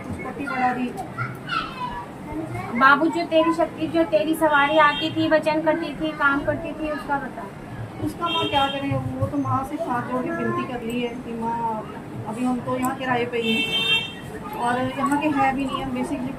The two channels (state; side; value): identical; both; correlation 1.00